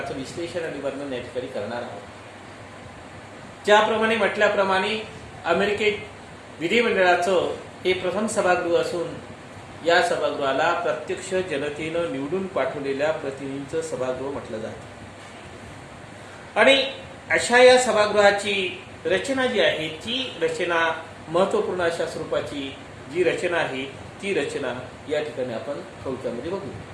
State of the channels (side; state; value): both; identical; correlation 1.00